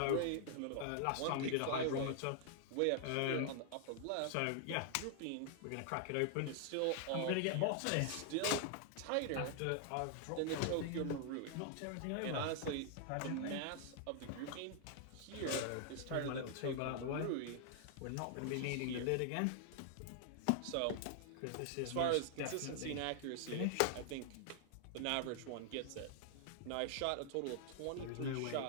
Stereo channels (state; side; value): different; both; correlation 0.00